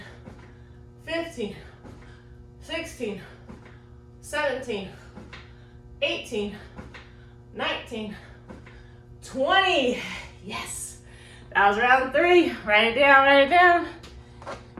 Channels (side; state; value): both; identical; correlation 1.00